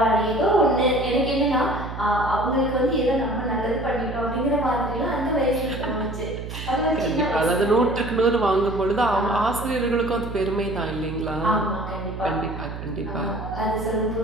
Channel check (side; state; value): right; noise; hum, 8 dB below the sound